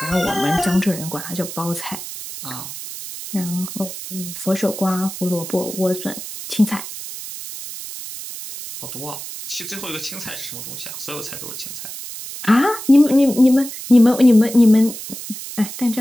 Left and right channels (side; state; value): right; noise; hiss, 10 dB below the sound